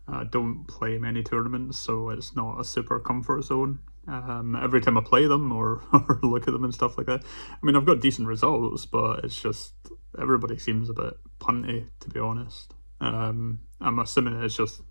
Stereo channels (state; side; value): inverted; both; correlation -1.00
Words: I don't play many tournaments, so it's not a super comfort zone. Every time I play them or, or look at them and stuff like that, I mean, I've got decent results, but it's just everybody seems a bit punty, to be honest. I'm assuming it's just